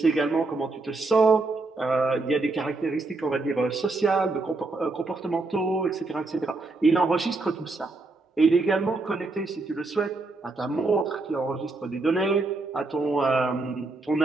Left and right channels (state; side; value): quieter; left; 3.4 dB